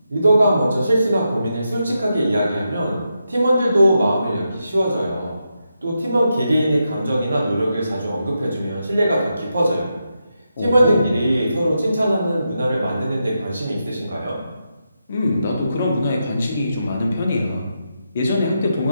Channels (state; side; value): inverted; both; correlation -0.85